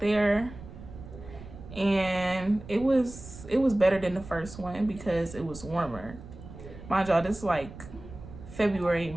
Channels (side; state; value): right; noise; rumble, 15 dB below the sound